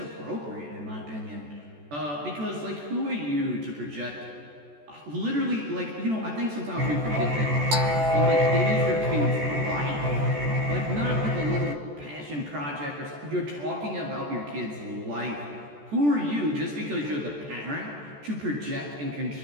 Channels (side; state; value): left; late; 14 ms